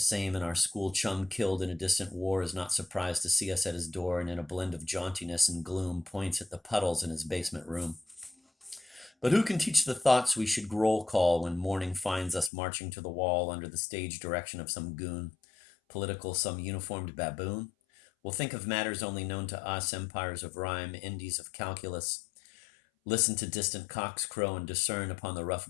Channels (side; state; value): right; drops out; at 12.5 s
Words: and our school chum killed in a distant war is not surprised to see us at his door, and in a blend of jauntiness and gloom points at the puddles in his basement room. But who can teach the thoughts we should roll call when morning finds us marching to the wall under the stage direction of some goon, political, some uniformed baboon? We'll think of matters only known to us, empires of rhyme, Indies of calculus. Listen to distant cocks crow and discern upon the